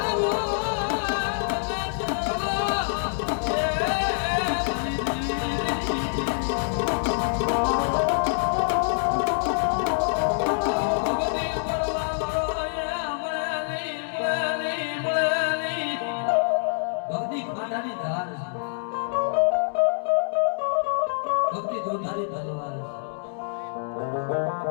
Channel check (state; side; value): silent; right; digital silence